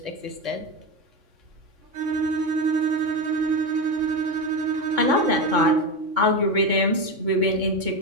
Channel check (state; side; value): late; left; 3.6 ms